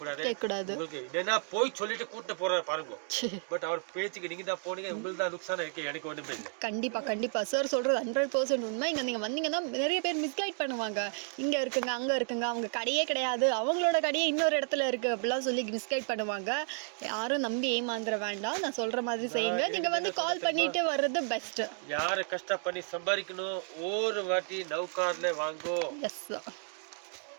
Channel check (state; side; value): silent; left; 56 dB below the other